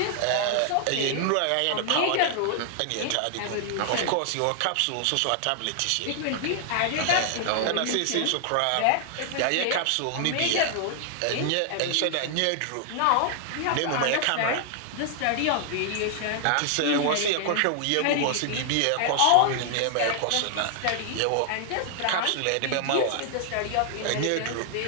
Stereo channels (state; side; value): different; both; correlation 0.00